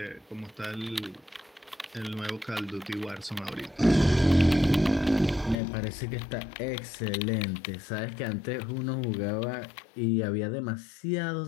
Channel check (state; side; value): drops out; right; at 5.6 s